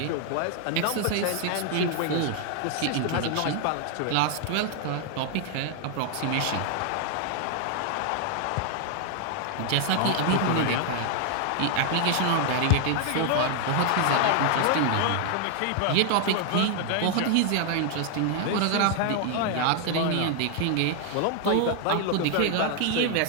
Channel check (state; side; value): different; both; correlation 0.00